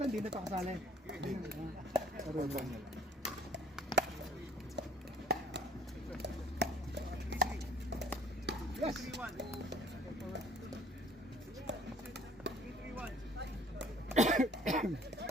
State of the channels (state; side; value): normal; both; correlation 0.54